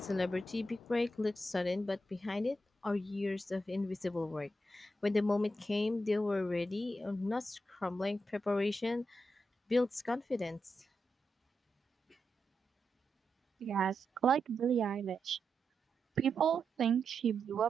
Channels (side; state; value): both; normal; correlation 0.86